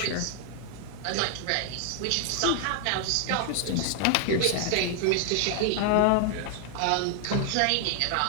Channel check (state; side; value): different; both; correlation 0.00